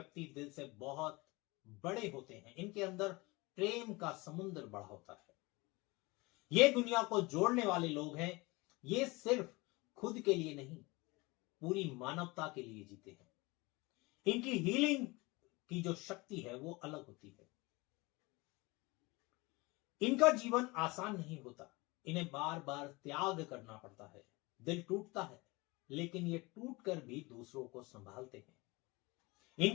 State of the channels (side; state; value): right; quieter; 24.1 dB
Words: दिल से बहुत बड़े होते हैं। इनके अंदर प्रेम का समुद्र बड़ा होता है। ये दुनिया को जोड़ने वाले लोग हैं। ये सिर्फ खुद के लिए नहीं, पूरी मानवता के लिए जीते हैं। इनकी हीलिंग की जो शक्ति है वो अलग होती है। इनका जीवन आसान नहीं होता, इन्हें बार बार त्याग करना पड़ता है। दिल टूटता है, लेकिन ये टूटकर भी दूसरों को संभालते हैं।